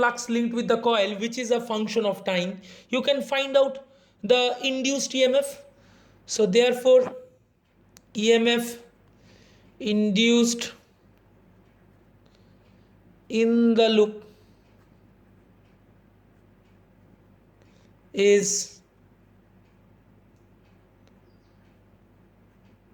linked with the coil, which is a function of time, you can find out the induced EMF. So therefore EMF induced in the loop is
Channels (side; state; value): both; identical; correlation 1.00